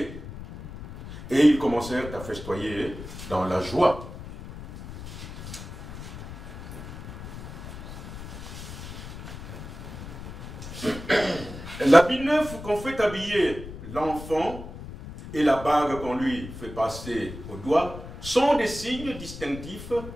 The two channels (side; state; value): left; noise; rumble, 11 dB below the sound